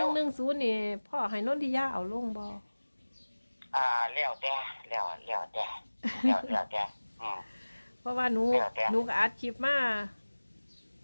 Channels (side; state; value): both; inverted; correlation -1.00